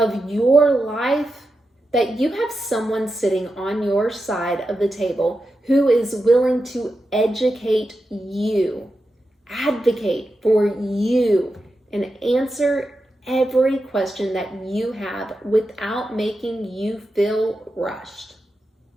your life, that you have someone sitting on your side of the table who is willing to educate you, advocate for you, and answer every question that you have without making you feel rushed.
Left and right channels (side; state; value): both; normal; correlation 0.89